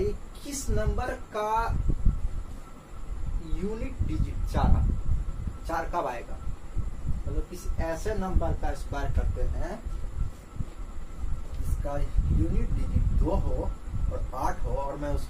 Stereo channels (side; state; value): both; identical; correlation 1.00